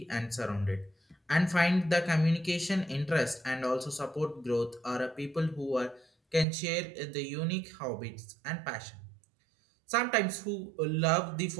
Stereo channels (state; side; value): drops out; left; at 6.5 s